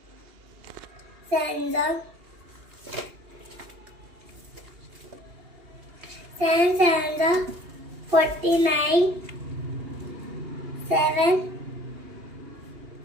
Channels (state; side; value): late; left; 2.8 ms